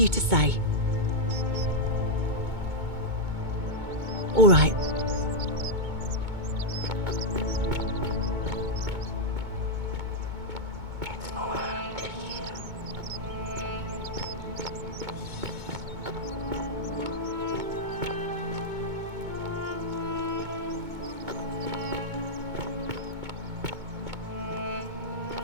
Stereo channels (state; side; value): late; left; 2.2 ms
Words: to say. All right.